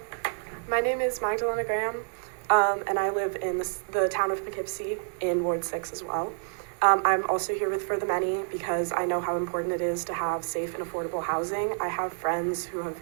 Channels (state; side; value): silent; left; digital silence